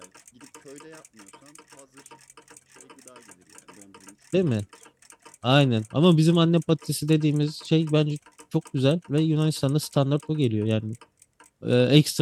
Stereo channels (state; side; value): identical; both; correlation 1.00